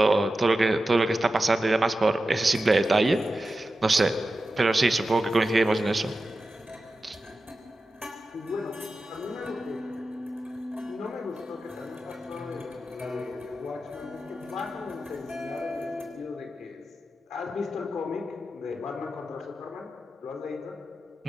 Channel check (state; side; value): normal; both; correlation 0.92